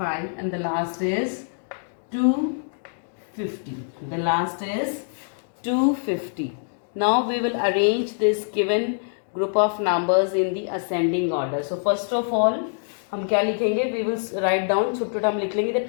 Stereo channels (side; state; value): right; silent; digital silence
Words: and the last is 250. The last is 250. Now we will arrange this given group of numbers in the ascending order. So first of all हम क्या लिखेंगे? We will write down, छोटा छोटा हम लिख लेंगे